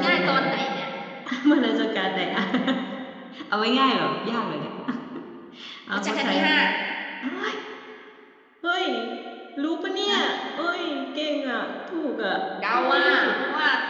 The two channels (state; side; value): identical; both; correlation 1.00